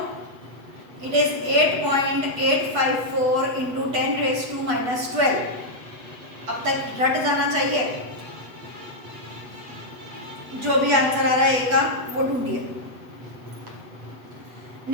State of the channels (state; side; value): late; left; 8.2 ms